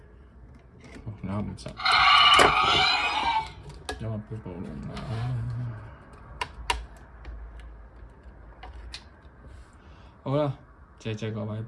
咬唔實，因為飆暴龍啦。好啦，謝謝各位，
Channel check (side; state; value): both; identical; correlation 1.00